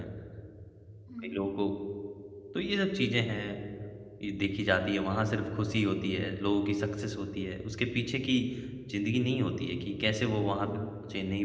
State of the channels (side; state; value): both; identical; correlation 1.00